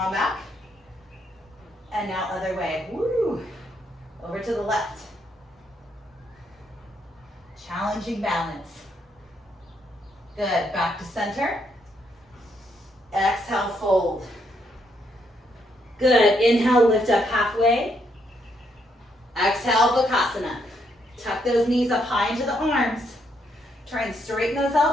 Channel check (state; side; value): normal; both; correlation 0.75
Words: back. And now other way. Woo. Over to the left. Challenging balance. Good. Back to center. Exhale, fold. Good. Inhale, lift up halfway. Exhale, Bakasana. Tuck those knees up high into the arms. Try and straighten those